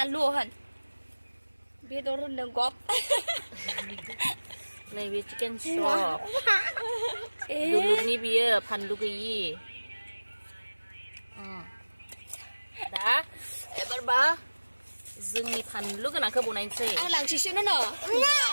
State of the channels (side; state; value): both; inverted; correlation -1.00